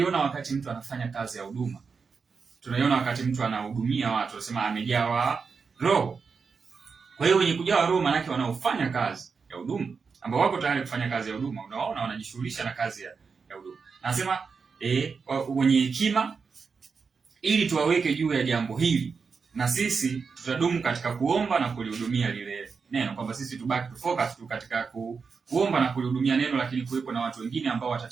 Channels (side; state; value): left; quieter; 5.3 dB